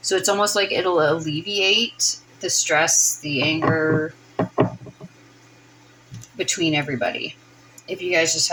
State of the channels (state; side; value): identical; both; correlation 1.00